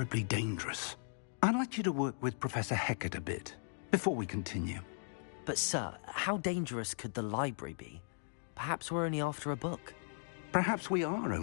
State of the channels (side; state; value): right; silent; digital silence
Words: dangerous. I'd like you to work with Professor Hecat a bit before we continue. But sir, how dangerous could the library be? Perhaps we're only after a book. Perhaps we are